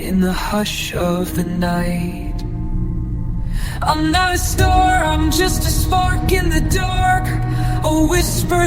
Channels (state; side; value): identical; both; correlation 1.00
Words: in the hush of the night. I'm not a star, I'm just a spark in the dark, a